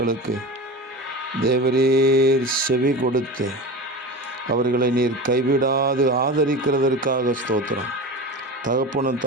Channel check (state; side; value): normal; both; correlation 0.29